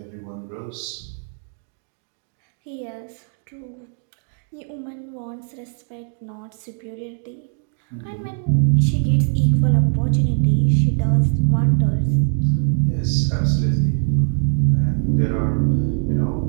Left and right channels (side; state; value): left; silent; 55 dB below the other